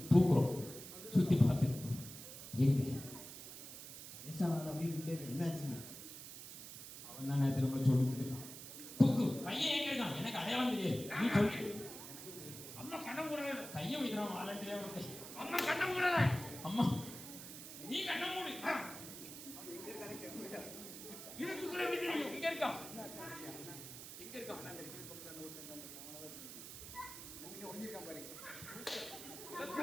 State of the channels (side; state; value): right; noise; hiss, 11 dB below the sound